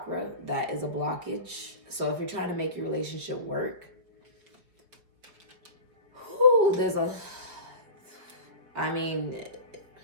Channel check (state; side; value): late; left; 5.4 ms